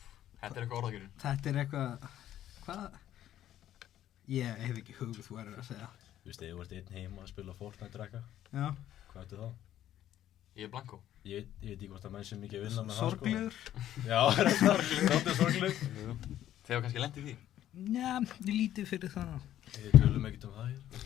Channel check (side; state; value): right; quieter; 12.1 dB